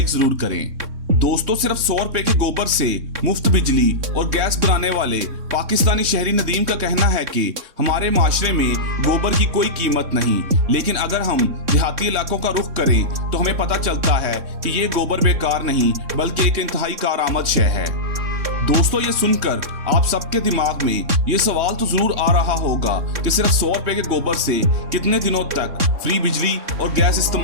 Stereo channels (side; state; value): left; late; 3.6 ms